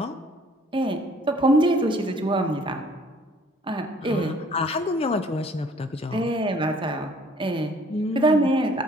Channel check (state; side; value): normal; both; correlation 0.57